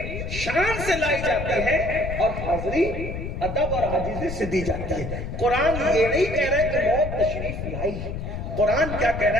شان سے لائی جاتی ہے اور حاضری ادب اور عاجزی سے دی جاتی ہے. قرآن یہ نہیں کہہ رہے کہ موت تشریف لائی ہے. قرآن کیا کہہ رہا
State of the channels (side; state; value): left; noise; rumble, 6 dB below the sound